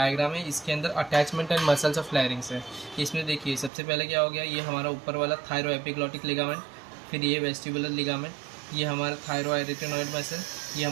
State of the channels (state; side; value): drops out; left; at 3.7 s